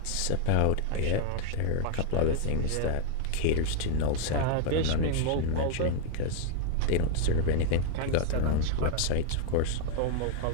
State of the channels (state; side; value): different; both; correlation 0.00